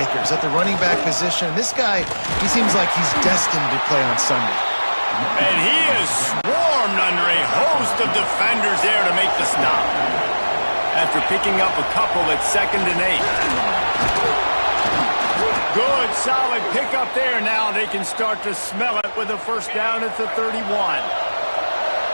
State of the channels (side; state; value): both; inverted; correlation -1.00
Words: at the running back position. And this guy, he seems like he's destined to play on Sunday. And he is swarmed under a host of defenders there to make the stop. After picking up a couple at 2nd and 8. Good, solid pickup there. Now they can start to smell it with a first down at the 31.